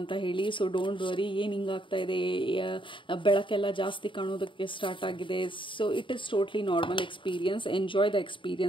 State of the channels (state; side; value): late; right; 0.24 ms